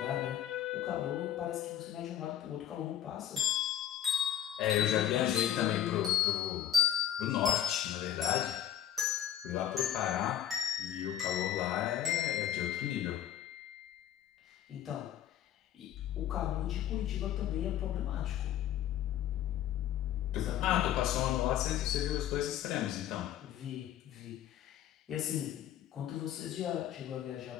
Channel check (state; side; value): quieter; right; 11.0 dB